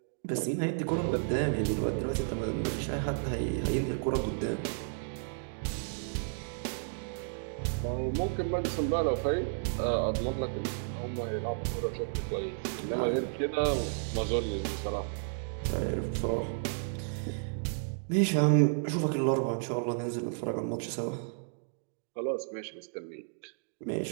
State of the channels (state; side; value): silent; left; digital silence